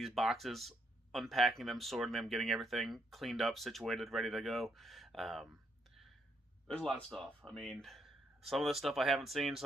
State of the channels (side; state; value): both; normal; correlation 0.75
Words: boxes, unpacking them, sorting them, getting everything cleaned up, situated, ready to go. There's a lot of stuff. I mean, some of the stuff I haven't seen,